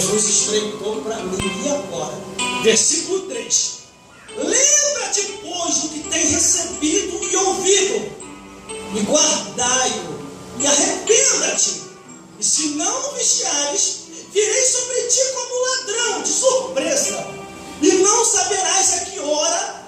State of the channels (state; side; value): identical; both; correlation 1.00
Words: estreitou para mim. E agora? Versículo 3: lembra-te, pois, do que tem recebido e ouvido, e guardai-o, e arrependa-te. E se não vigiares, virei sobre ti como ladrão, de surpresa, e não saberás a que